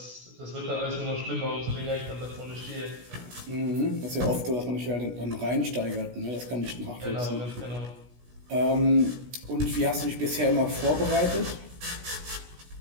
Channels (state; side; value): late; left; 16 ms